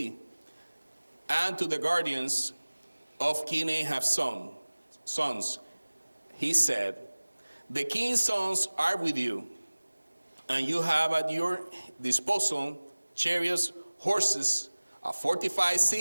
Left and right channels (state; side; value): inverted; both; correlation -1.00